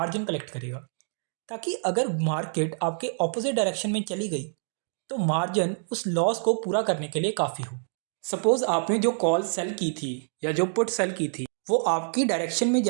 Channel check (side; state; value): left; silent; digital silence